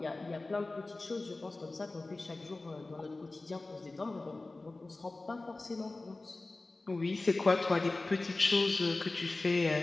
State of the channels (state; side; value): quieter; right; 3.2 dB